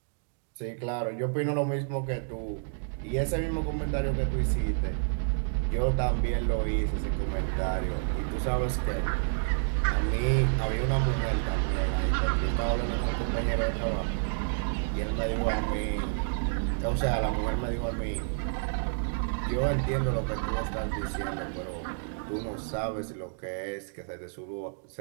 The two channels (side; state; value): left; silent; digital silence